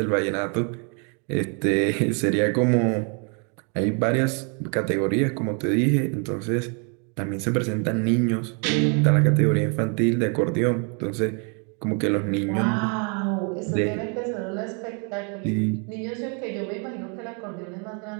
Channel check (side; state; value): left; quieter; 37.9 dB